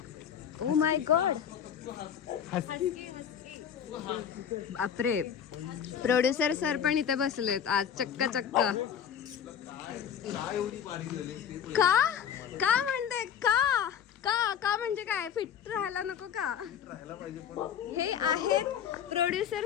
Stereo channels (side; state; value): right; quieter; 8.6 dB